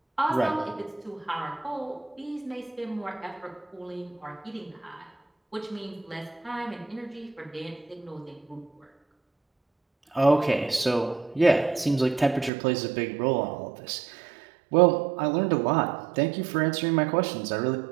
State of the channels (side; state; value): left; drops out; at 12.5 s